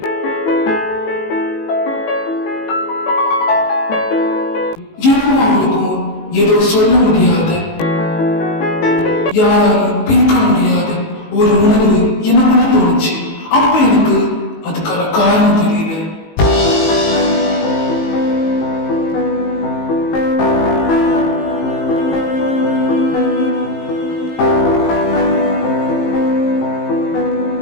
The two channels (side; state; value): right; late; 19 ms